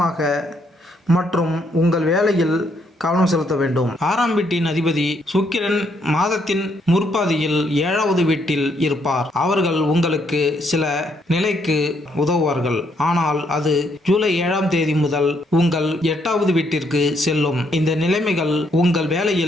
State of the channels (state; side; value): normal; both; correlation 0.73